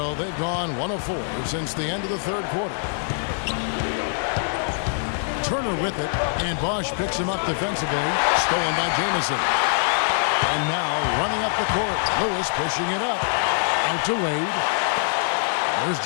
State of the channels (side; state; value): right; silent; digital silence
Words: they've gone 1 of 4 since the end of the third quarter. Turner with it, and Bosch picks him up defensively. Stolen by Jamison. And now running up the court. Lewis pushing it up. Out to Wade. There's